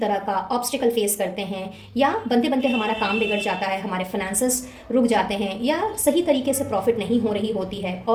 का ऑब्स्टिकल फेस करते हैं या बनते बनते हमारा काम बिगड़ जाता है, हमारे फाइनेंसेस रुक जाते हैं या सही तरीके से प्रॉफिट नहीं हो रही होती है,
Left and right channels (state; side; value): identical; both; correlation 1.00